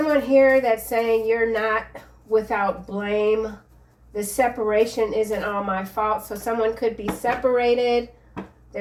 here that's saying you're not without blame. The separation isn't all my fault. So someone could be separated.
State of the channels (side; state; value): both; identical; correlation 1.00